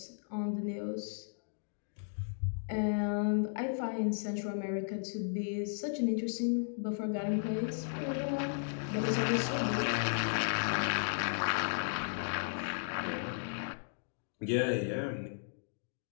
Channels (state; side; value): silent; right; digital silence